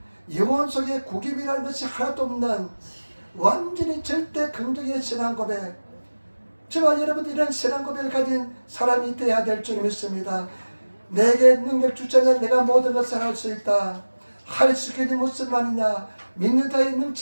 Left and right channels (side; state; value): both; inverted; correlation -1.00